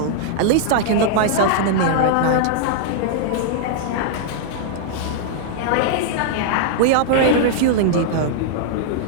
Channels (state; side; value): different; both; correlation -0.01